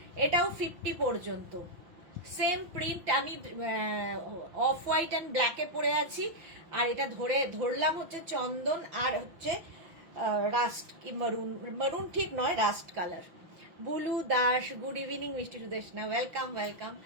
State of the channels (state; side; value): late; left; 6.0 ms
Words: এটাও 50 পর্যন্ত সেম প্রিন্ট। আমি অফ হোয়াইট অ্যান্ড ব্ল্যাকে পরে আছি, আর এটা ধরলাম হচ্ছে চন্দন, আর হচ্ছে রাস্ট কি মারুন ঠিক নয়, rust colour. Bulu Das, good evening. মিষ্টি সুদেশনা, ওয়েলকাম ওয়েলকাম।